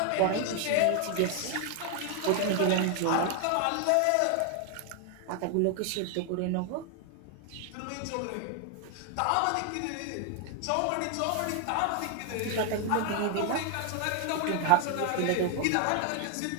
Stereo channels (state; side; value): different; both; correlation 0.00